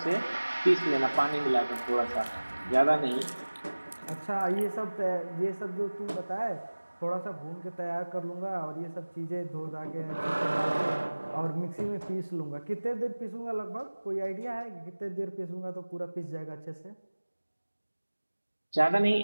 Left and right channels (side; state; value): both; inverted; correlation -1.00